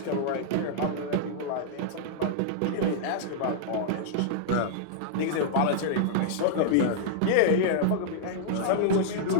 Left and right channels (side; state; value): both; different; correlation -0.01